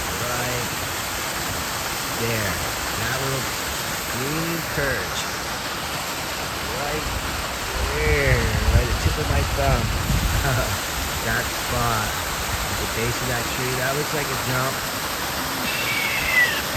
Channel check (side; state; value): both; identical; correlation 1.00